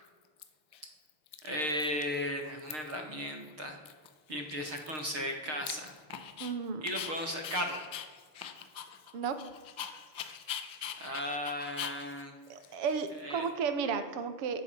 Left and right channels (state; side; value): late; left; 6.5 ms